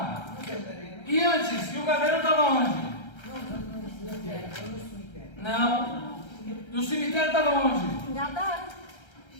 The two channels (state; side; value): late; right; 1.3 ms